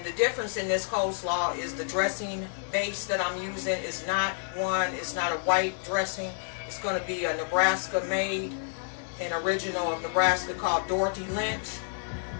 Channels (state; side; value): silent; right; digital silence